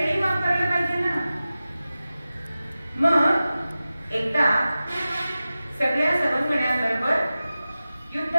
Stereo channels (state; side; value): inverted; both; correlation -0.95